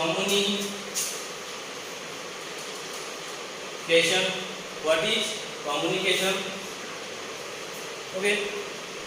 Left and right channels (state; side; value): identical; both; correlation 1.00